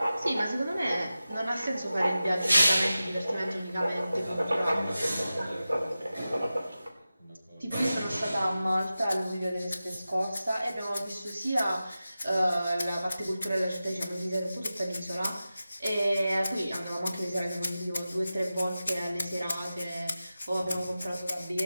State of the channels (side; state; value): both; inverted; correlation -0.94